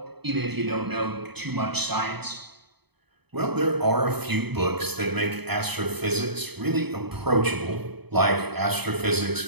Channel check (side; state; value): left; late; 0.98 ms